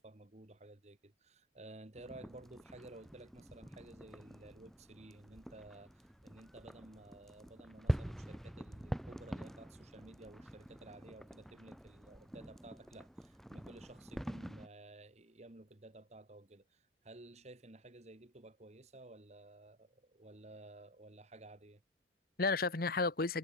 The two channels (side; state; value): both; normal; correlation 0.41